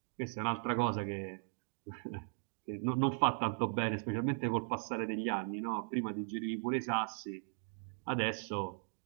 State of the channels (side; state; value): left; silent; digital silence